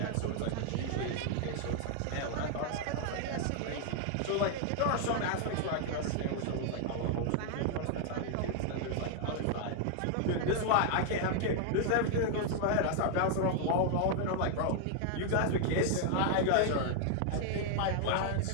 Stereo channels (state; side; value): different; both; correlation 0.00